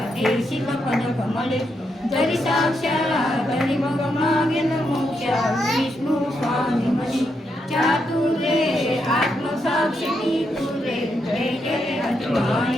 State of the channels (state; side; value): normal; both; correlation 0.81